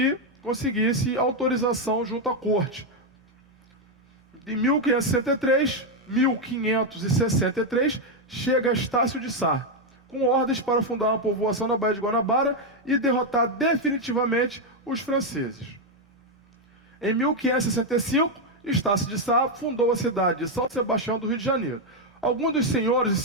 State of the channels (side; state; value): both; normal; correlation 0.03